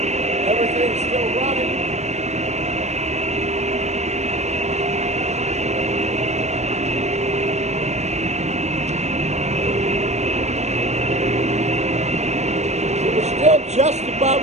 Everything's still running. Just above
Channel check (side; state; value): left; late; 0.33 ms